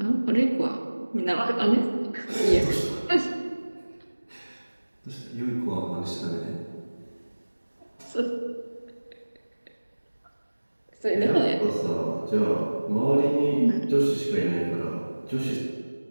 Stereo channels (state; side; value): inverted; both; correlation -1.00